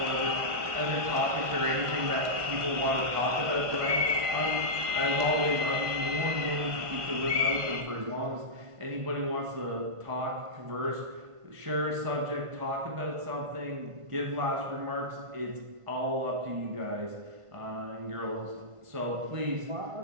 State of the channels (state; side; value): late; left; 1.5 ms